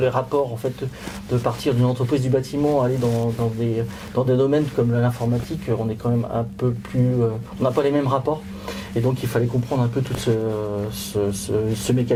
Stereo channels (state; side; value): identical; both; correlation 1.00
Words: rapports, en fait, de partir d'une entreprise du bâtiment, aller dans des domaines comme l'informatique, on est quand même un peu plus, on n'a pas les mêmes rapports. Et donc il fallait comprendre un peu tout ce